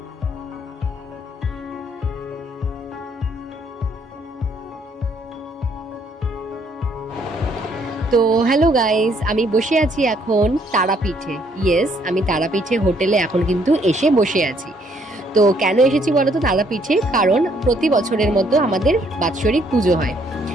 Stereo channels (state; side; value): normal; both; correlation 0.67